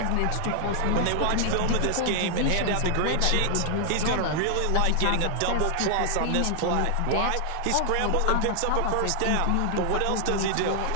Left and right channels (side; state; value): both; different; correlation 0.00